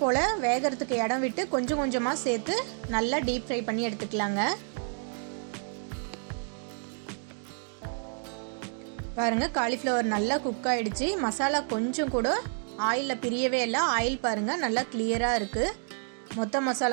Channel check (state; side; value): silent; left; 56 dB below the other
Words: போல் வேகிறதுக்கு இடம் விட்டு கொஞ்சம் கொஞ்சமாக சேர்த்து நல்லா டீப் ஃப்ரை பண்ணி எடுத்துக்கலாங்க. பாருங்கள், காலிஃப்ளவர் நல்லா குக் ஆகிடுச்சு. மசாலா கொஞ்சம் கூட ஆயிலில் பிரியவே இல்லை. ஆயில் பாருங்கள் நல்லா கிளியராக இருக்குது. மொத்த